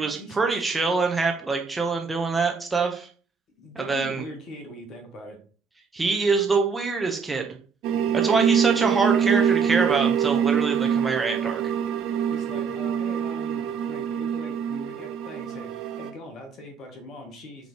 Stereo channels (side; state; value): left; quieter; 5.6 dB